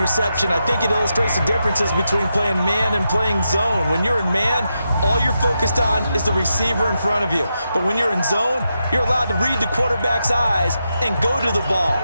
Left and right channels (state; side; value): inverted; both; correlation -0.86